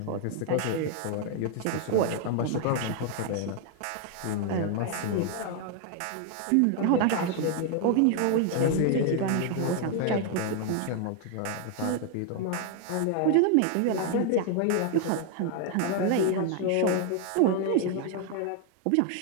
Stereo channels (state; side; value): different; both; correlation 0.00